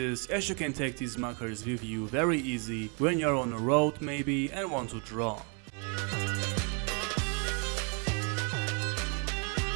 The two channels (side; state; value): left; quieter; 36.4 dB